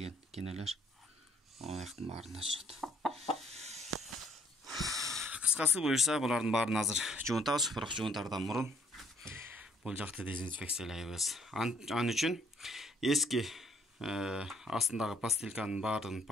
кенелер. Аяктын баарында жүрөт. Кыскасы буюрса, булардын баарын азыр жуунтабыз, бирок жуунтардан мурун бул жакты дезинфекциялайбыз. Ан үчүн эски астындагы пастилканын баарын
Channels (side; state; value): both; normal; correlation 0.64